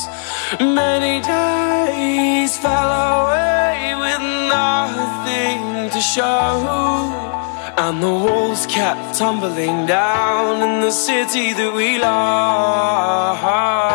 Many days fell away with nothing to show, and the walls kept tumbling down in the city that we love.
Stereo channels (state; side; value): silent; right; digital silence